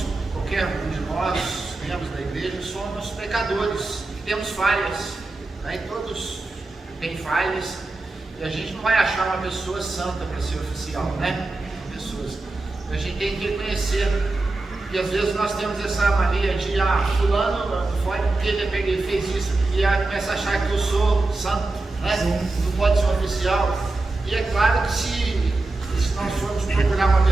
qualquer um de nós, membros da igreja, somos pecadores, temos falhas, né, e todos têm falhas, e a gente não vai achar uma pessoa santa para ser oficial, né? A gente tem que reconhecer que às vezes nós temos essa mania de, fulano foi porque ele fez isso, e começa a achar que eu sou santo, né? Não pode ser um oficial. E é claro que se nós formos procurar uma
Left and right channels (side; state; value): left; quieter; 3.1 dB